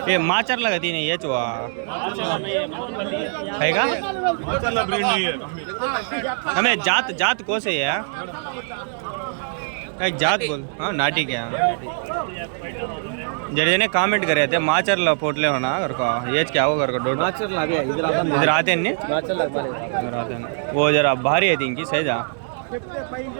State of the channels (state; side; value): silent; left; digital silence